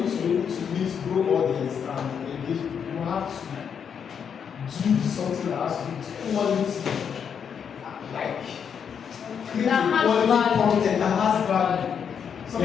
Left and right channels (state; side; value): quieter; right; 7.3 dB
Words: to be able to meet, grow audience and engage, you have to do something that has to do with quality. Like create That a has quality value. content that has value.